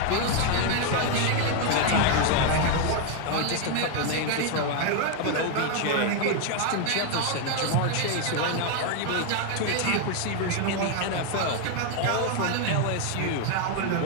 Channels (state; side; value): different; both; correlation 0.01